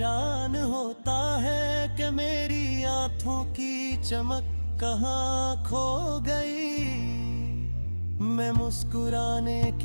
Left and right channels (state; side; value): inverted; both; correlation -1.00